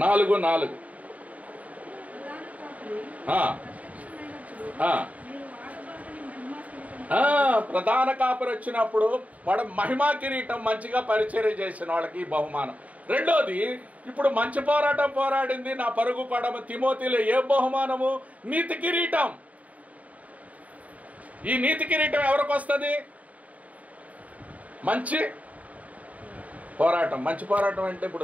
నాలుగు ప్రధాన కాపరి వచ్చినప్పుడు వాడు మహిమా కిరీటం, మంచిగా పరిచర్య చేసిన వాళ్ళకి బహుమానం. రెండోది, ఇప్పుడు మంచి పోరాటం పోరాడింది నా పరుగు పడమ తిమోతిలో ఏ బహుమానము? నీతి కిరీటం. ఈ నీతి కిరీటం ఎవరికి వస్తుంది? మంచి పోరాటం. మంచి పోరాటం అంటే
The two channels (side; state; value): left; late; 0.070 ms